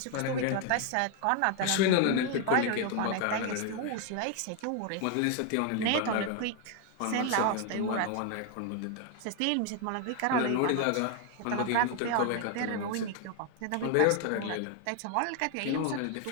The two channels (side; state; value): both; different; correlation 0.01